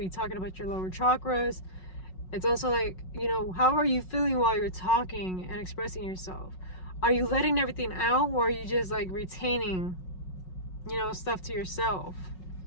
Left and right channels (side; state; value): right; late; 5.4 ms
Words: talking about your lower chakras? It's also like, you know, how are you feeling while you're talking and expressing yourself? Are you letting everything out, or are you just, like, retaining, you know, stuff to yourself?